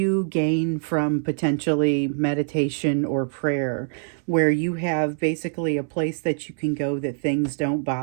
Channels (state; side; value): silent; left; 63 dB below the other